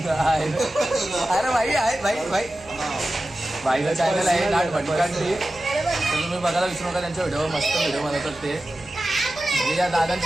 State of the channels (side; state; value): right; noise; hum, 24 dB below the sound